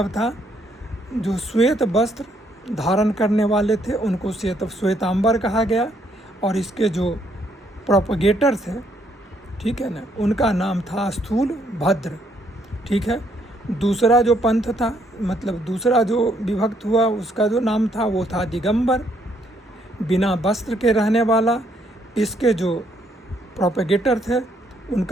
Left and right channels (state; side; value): normal; both; correlation 0.70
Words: था जो श्वेत वस्त्र धारण करने वाले थे उनको श्वेतांबर कहा गया। और इसके जो प्रोपगेटर थे, ठीक है ना, उनका नाम था स्थूल भद्र, ठीक है। दूसरा जो पंथ था, मतलब दूसरा जो विभक्त हुआ उसका जो नाम था वो था दिगंबर, बिना वस्त्र के रहने वाला। इसके जो प्रोपगेटर थे